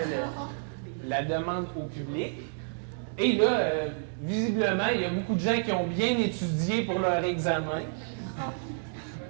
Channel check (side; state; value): left; silent; digital silence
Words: la demande au public. Et là, visiblement, il y a beaucoup de gens qui ont bien étudié pour leur examen.